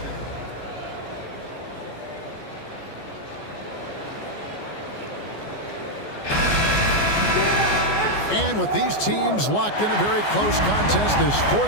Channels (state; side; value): late; right; 14 ms